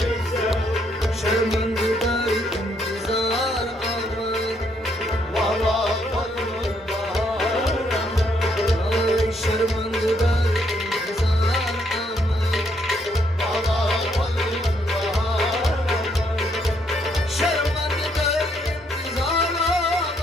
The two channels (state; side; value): normal; both; correlation 0.72